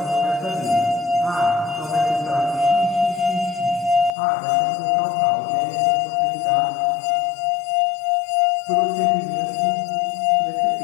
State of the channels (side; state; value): right; drops out; at 4.1 s